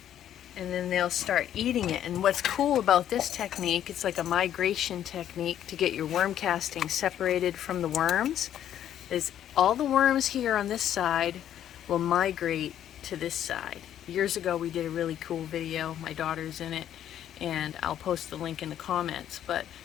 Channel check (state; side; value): quieter; right; 10.7 dB